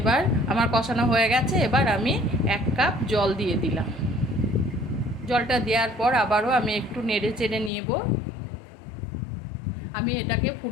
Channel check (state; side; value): drops out; right; at 7.7 s